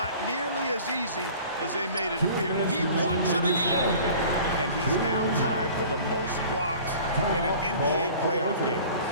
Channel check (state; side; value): inverted; both; correlation -0.45